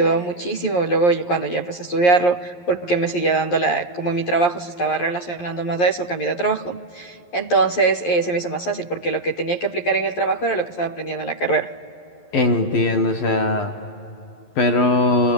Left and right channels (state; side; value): late; right; 11 ms